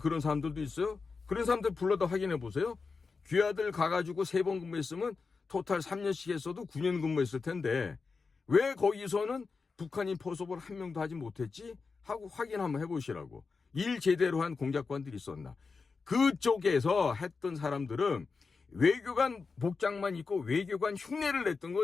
사람들도 있어요. 그런 사람들 불러다 확인해 보세요. 귀하들 가가지고 3번 근무했으면 토탈 3년씩 했어도 9년 근무했을 텐데 왜 거기서는 북한인 포섭을 한 명도 하지 못했지? 하고 확인 한번 해보시라고. 일 제대로 한 공작관들이 있었나. 그쪽에서 했던 사람들은 외교관 복장만 입고 외교관 흉내를 냈던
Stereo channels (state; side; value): quieter; right; 4.6 dB